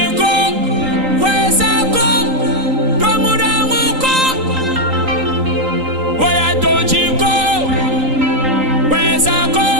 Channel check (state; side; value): late; left; 3.8 ms